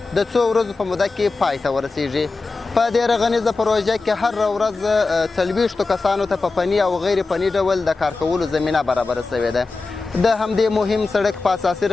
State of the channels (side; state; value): right; quieter; 3.8 dB